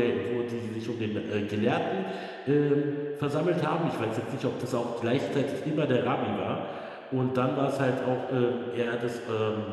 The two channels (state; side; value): identical; both; correlation 1.00